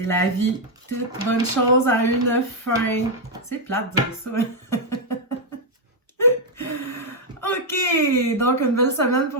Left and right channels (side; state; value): both; normal; correlation 0.00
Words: la vie. Toute bonne chose a une fin. C'est plate de dire ça. OK. Donc, une belle semaine